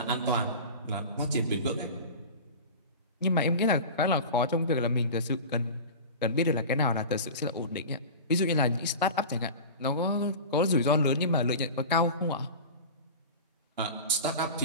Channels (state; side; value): inverted; both; correlation -0.32